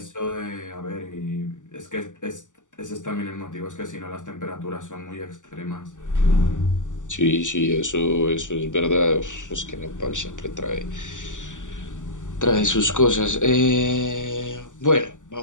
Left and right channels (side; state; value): right; late; 0.86 ms